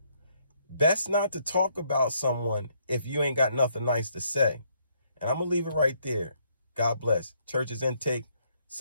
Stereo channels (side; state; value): both; inverted; correlation -0.71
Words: Best not to talk about someone if you ain't got nothing nice to say. And I'm going to leave it right there. God bless. Church's Intake.